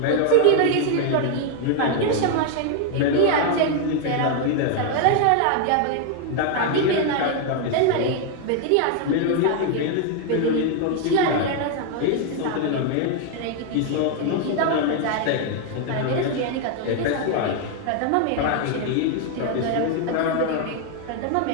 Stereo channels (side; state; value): both; different; correlation 0.00